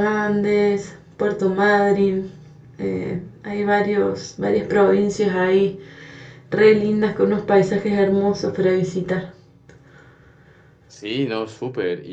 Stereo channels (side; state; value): both; identical; correlation 1.00